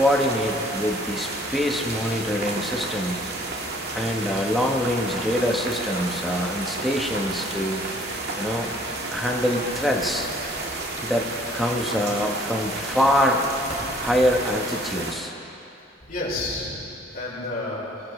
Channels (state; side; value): normal; both; correlation 0.58